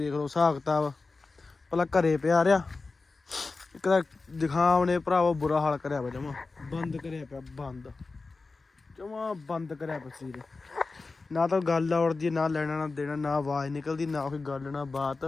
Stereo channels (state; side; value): quieter; right; 3.9 dB